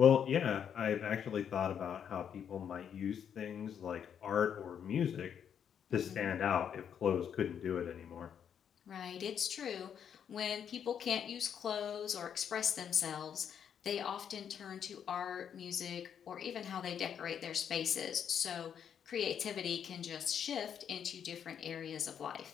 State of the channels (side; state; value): right; quieter; 8.3 dB